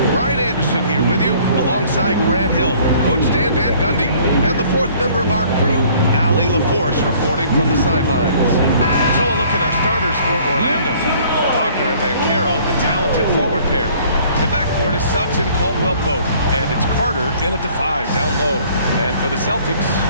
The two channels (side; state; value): both; inverted; correlation -0.56